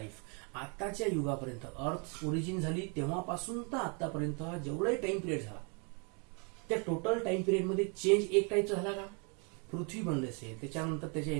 आताच्या युगापर्यंत, अर्थ ओरिजिन झाली तेव्हापासून तर आतापर्यंत जेवढाही टाइम पिरियड झाला, त्या टोटल टाइम पिरियड मध्ये चेंज एक टाईपचा झाला का, पृथ्वी बनले असेल, त्याच्यानंतर त्याचे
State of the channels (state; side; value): quieter; left; 35.8 dB